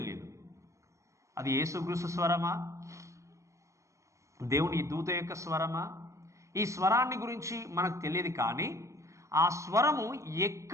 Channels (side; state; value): left; late; 0.15 ms